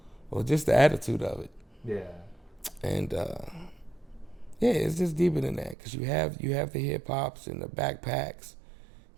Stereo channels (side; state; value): left; drops out; at 5.8 s